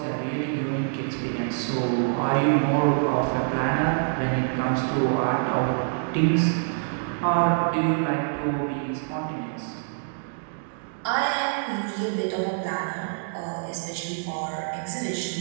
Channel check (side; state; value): left; silent; digital silence